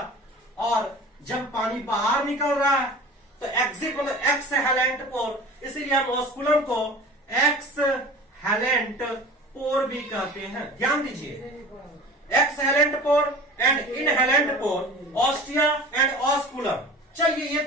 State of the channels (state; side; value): normal; both; correlation 0.39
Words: और जब पानी बाहर निकल रहा है तो एग्जिट मतलब एक्सहेलेंट पोर, इसीलिए हम ऑस्कुलम को एक्सहेलेंट पोर भी कहते हैं। ध्यान दीजिए, exhalant pore and inhalant pore, ostia and osculum. चलिए, ये